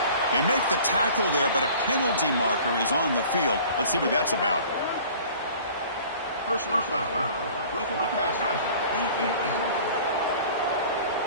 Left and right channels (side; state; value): both; inverted; correlation -0.47